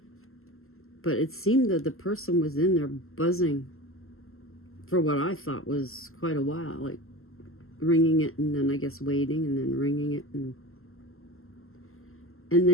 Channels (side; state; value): right; late; 0.62 ms